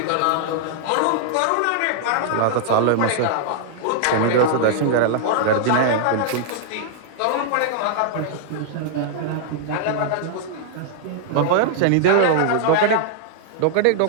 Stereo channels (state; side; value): different; both; correlation -0.01